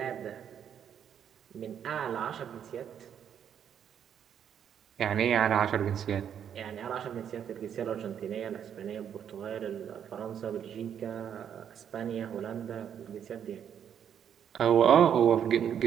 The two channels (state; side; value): quieter; left; 8.8 dB